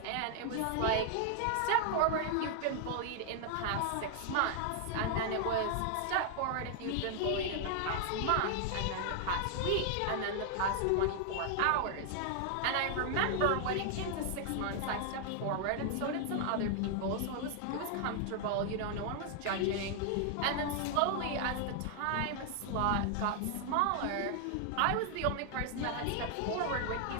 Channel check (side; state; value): both; different; correlation 0.00